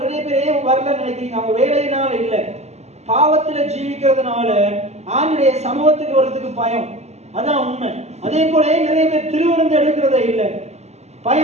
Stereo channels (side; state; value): left; late; 0.32 ms